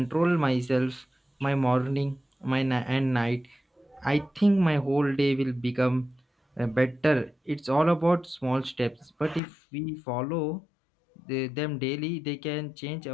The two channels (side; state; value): right; drops out; at 9.4 s